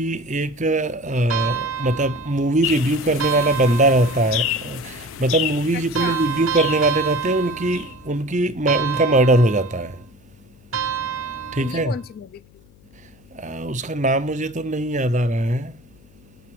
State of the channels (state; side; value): noise; left; hum, 28 dB below the sound